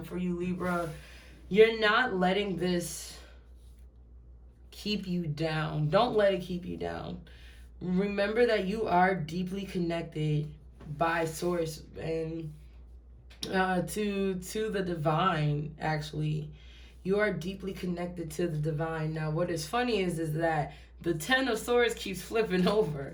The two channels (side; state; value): both; identical; correlation 1.00